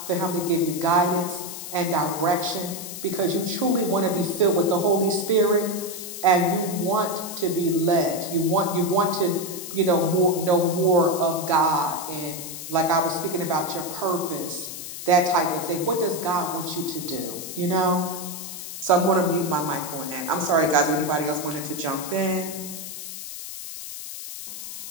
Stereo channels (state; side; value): noise; left; hiss, 9 dB below the sound